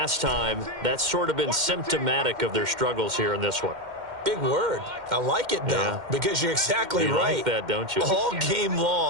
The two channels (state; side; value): late; left; 2.1 ms